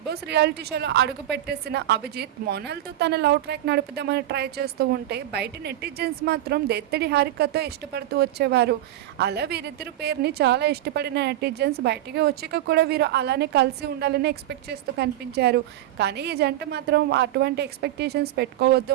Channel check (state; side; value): quieter; left; 13.3 dB